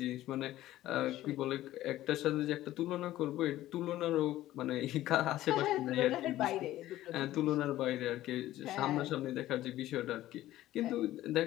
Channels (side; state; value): right; quieter; 14.8 dB